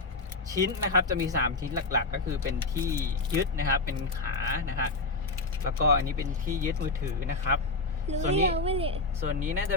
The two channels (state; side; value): quieter; right; 3.4 dB